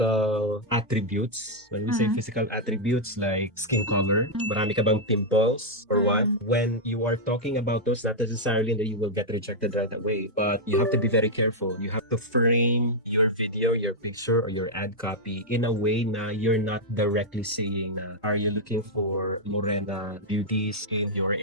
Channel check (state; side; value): normal; both; correlation -0.04